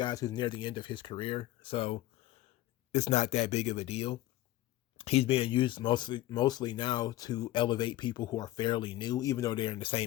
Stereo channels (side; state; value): right; quieter; 15.7 dB